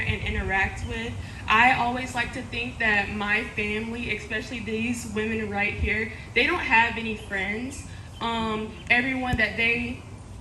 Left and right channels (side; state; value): both; identical; correlation 1.00